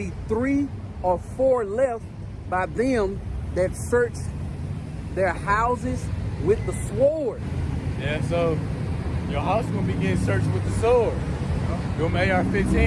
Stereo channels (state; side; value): identical; both; correlation 1.00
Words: 3 or 4 left by them that search their houses with the sword. Yeah, so your house gonna be getting searched with the sword. Them